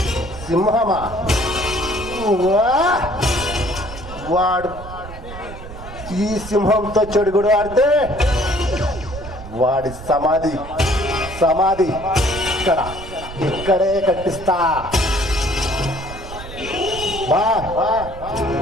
సింహమా? వాడు ఈ సింహంతో చెడుగుడు ఆడితే వాడి సమాధి ఇక్కడే కట్టిస్తా.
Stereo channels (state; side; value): noise; right; rumble, 13 dB below the sound